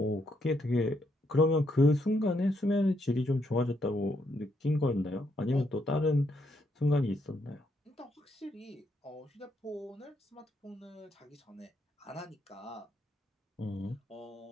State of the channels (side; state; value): both; normal; correlation 0.76